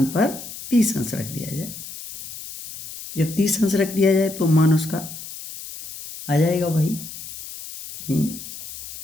पर 30 अंश रख दिया जाए। जब 30 अंश रख दिया जाए तो मान उसका आ जाएगा भाई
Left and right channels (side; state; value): left; noise; hiss, 12 dB below the sound